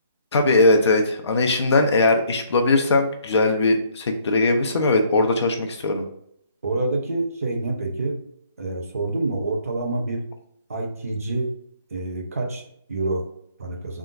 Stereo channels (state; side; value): inverted; both; correlation -0.63